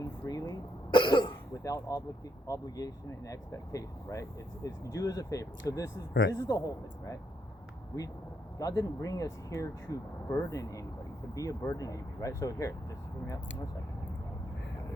freely, right? Without obligation and expectation, right? It's do as a favor. So this is the whole thing, right? God didn't bring us here to burden anybody, to be a burden to anybody, right? So here, just hear me out for a second.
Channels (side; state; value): both; normal; correlation 0.78